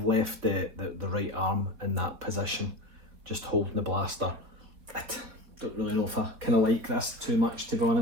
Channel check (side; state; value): left; late; 4.2 ms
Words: left the right arm in that position, just holding the blaster. I don't really know if I kind of like this too much, to be